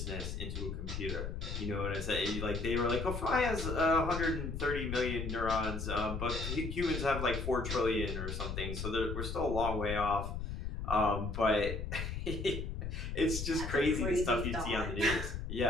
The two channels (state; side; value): noise; left; rumble, 4 dB below the sound